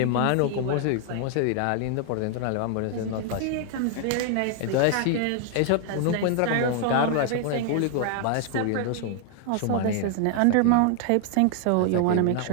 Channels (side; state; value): both; different; correlation 0.00